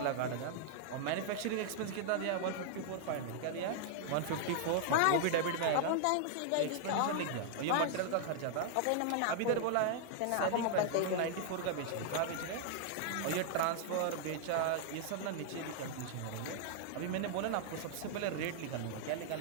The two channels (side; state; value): both; different; correlation -0.01